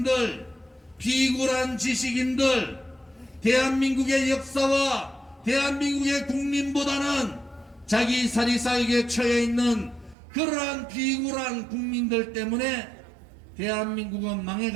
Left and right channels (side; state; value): left; drops out; at 10.2 s